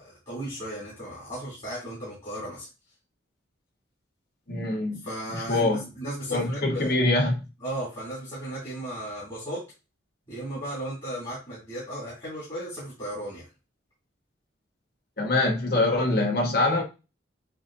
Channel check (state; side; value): normal; both; correlation 0.30